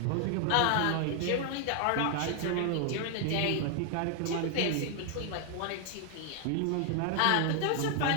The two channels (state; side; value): different; both; correlation 0.00